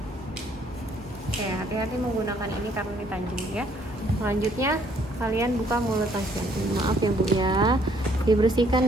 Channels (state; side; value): normal; both; correlation 0.64